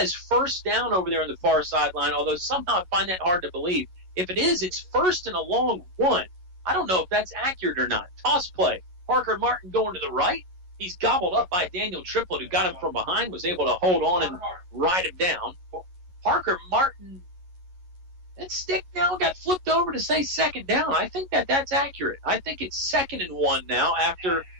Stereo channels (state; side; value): late; left; 11 ms